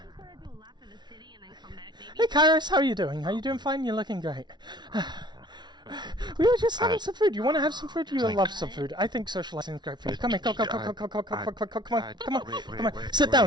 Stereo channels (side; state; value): left; late; 0.21 ms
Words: Hey, Kairos, how are you doing? Are you doing fine? You're looking great. We were just having some food. You want to have some food? You love some food. I think socializing is great for you. Come here, come on. Sit